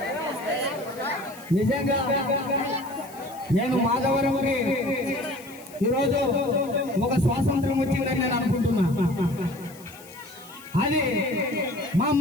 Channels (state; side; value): noise; left; hiss, 21 dB below the sound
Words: నిజంగా నేను మాధవరంకి ఈరోజు ఒక స్వాతంత్రం వచ్చిందని నేను అనుకుంటున్నా. అది మా